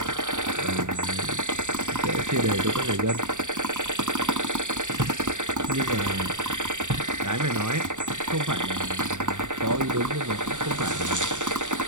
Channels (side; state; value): left; late; 0.85 ms